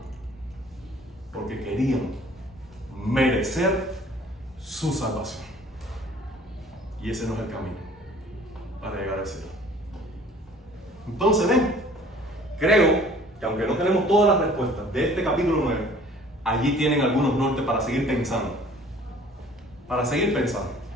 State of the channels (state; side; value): normal; both; correlation 0.52